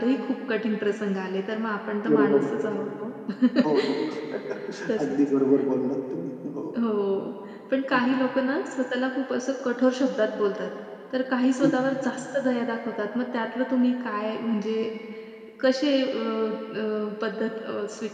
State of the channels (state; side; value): identical; both; correlation 1.00